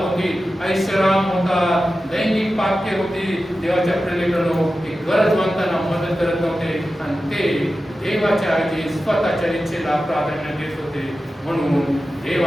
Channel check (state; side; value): normal; both; correlation 0.93